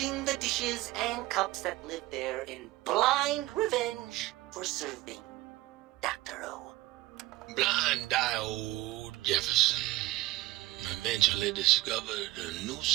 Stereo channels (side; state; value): left; quieter; 18.6 dB